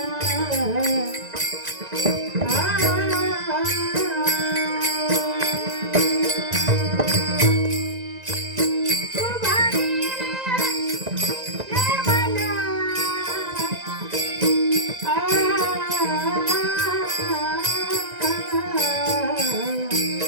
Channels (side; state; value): left; late; 1.9 ms